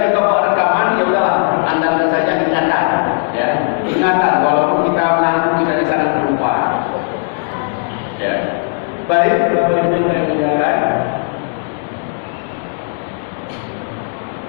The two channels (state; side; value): silent; right; 62 dB below the other